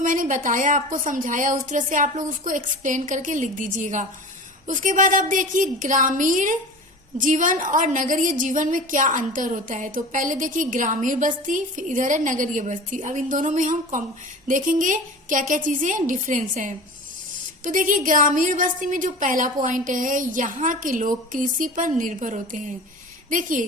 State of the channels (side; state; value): both; normal; correlation 0.35